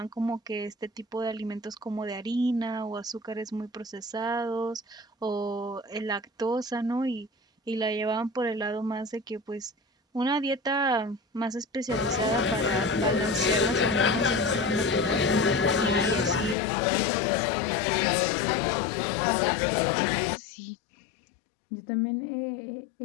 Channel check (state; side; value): drops out; right; at 16.6 s